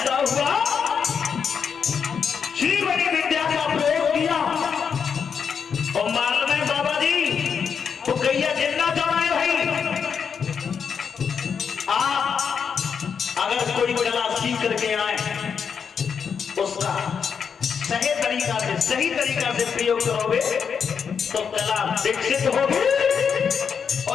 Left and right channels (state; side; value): quieter; right; 6.7 dB